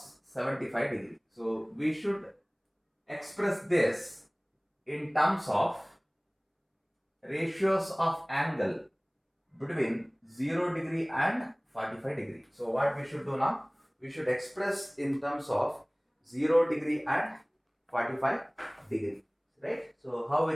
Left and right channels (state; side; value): identical; both; correlation 1.00